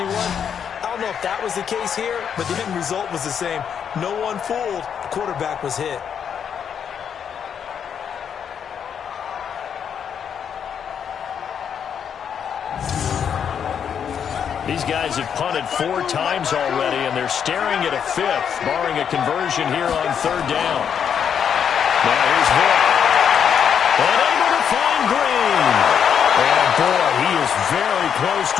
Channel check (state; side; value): quieter; right; 7.9 dB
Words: I don't know if that was the case here, but the end result was the same. No one fooled. The quarterback was hit. These guys have punted 4 times already, and they're staring at a 5th, barring a conversion here on 3rd down. Now here's Vic. Unable to find Green. And boy, he is very close